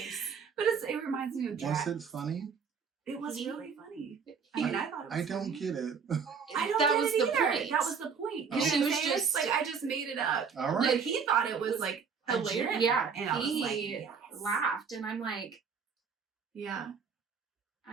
But it reminds me of Was Jack. it funny? It was really funny. He- I thought it was I don't funny. get it. I don't that get was it the either. point. That was the point. Oh. You know She what was I'm saying? just- like, I just made it up. All right. Like, he thought it was like a hilarious. gem. Yeah. And I was like, He yes. laughed. And I'm like, Yeah.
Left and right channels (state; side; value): quieter; left; 6.0 dB